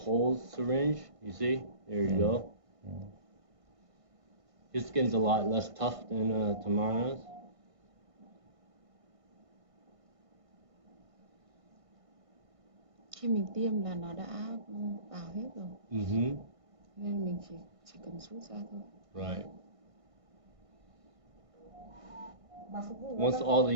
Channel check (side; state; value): left; late; 1.5 ms